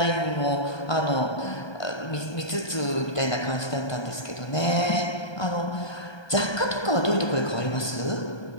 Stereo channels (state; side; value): late; right; 1.2 ms